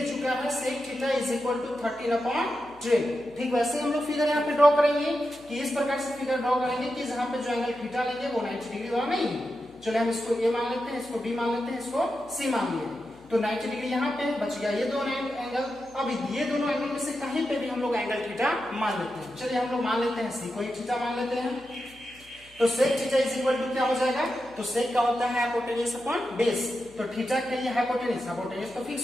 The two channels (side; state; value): left; noise; hum, 27 dB below the sound